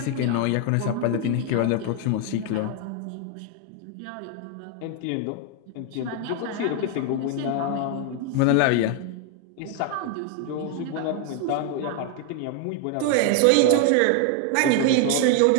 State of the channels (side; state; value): both; different; correlation 0.00